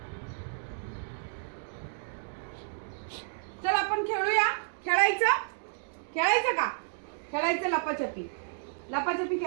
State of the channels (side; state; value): left; silent; digital silence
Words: चल आपण खेळूया. खेळायचं? खेळायचं का? खेळायचं लपाछपी. लपाछपी